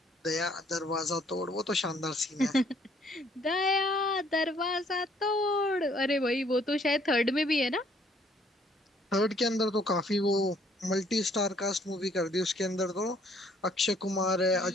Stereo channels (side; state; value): both; normal; correlation 0.63